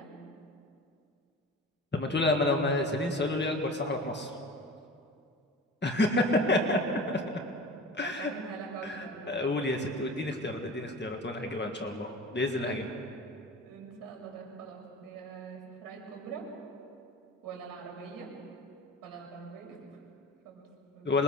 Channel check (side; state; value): both; normal; correlation 0.36